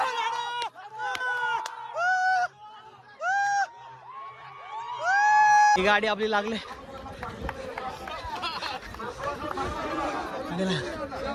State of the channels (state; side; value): identical; both; correlation 1.00